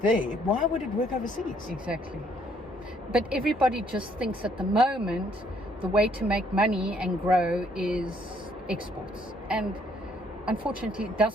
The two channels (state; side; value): normal; both; correlation 0.66